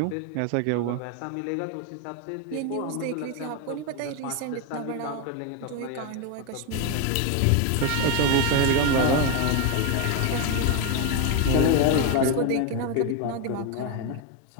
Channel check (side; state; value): both; different; correlation 0.02